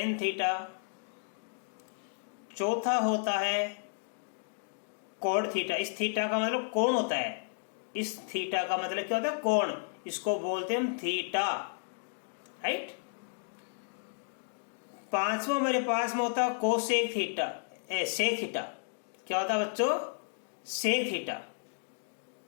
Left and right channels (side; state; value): right; silent; digital silence